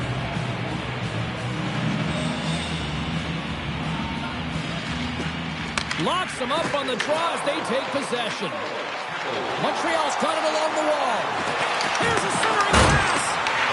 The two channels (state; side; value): identical; both; correlation 1.00